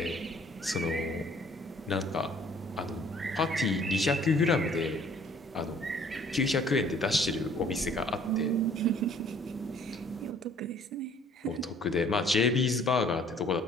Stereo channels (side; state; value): both; normal; correlation 0.57